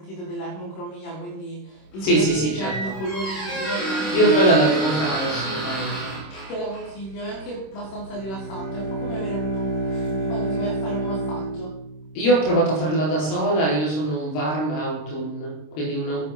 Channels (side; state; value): right; late; 26 ms